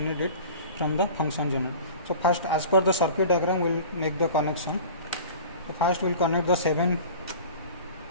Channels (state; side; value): inverted; both; correlation -0.40